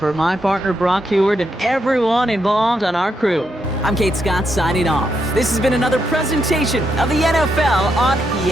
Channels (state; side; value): normal; both; correlation 0.80